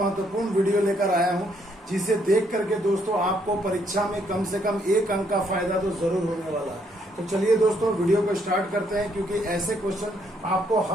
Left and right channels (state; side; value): normal; both; correlation 0.71